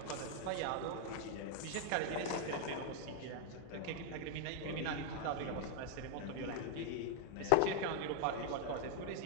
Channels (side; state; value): both; different; correlation 0.00